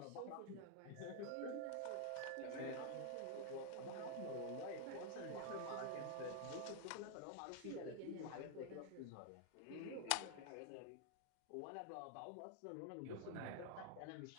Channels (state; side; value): different; both; correlation 0.00